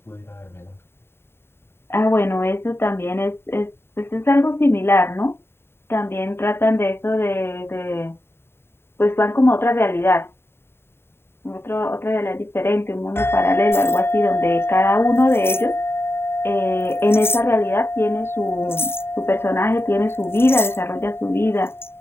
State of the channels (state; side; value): late; right; 0.11 ms